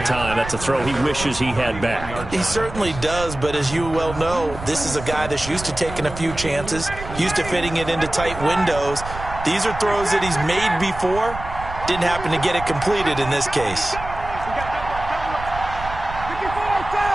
time. That's a throw he wishes he had back. He certainly does, but as you well know, this is a guy that's used to taking a few chances, used to fitting it into tight windows. These are throws that he's made before. Didn't happen to get it completed in this case.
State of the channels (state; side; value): noise; right; rumble, 11 dB below the sound